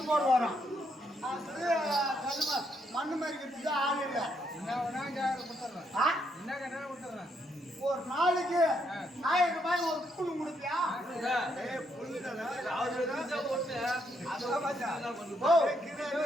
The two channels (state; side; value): normal; both; correlation 0.76